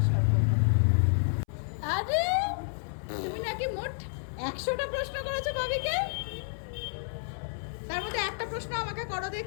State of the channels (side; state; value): right; silent; 58 dB below the other